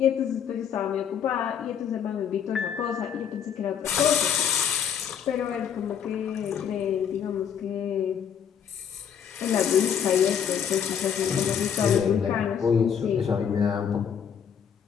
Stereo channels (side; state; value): right; quieter; 8.1 dB